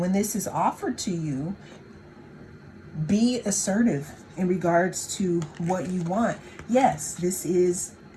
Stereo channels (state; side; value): identical; both; correlation 1.00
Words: when this is offered to you, be assertive in regards to what you want. Yes,